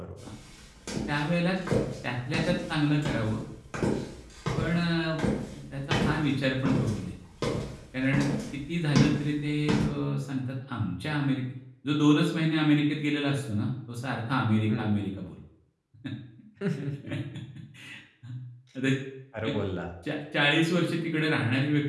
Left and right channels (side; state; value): both; identical; correlation 1.00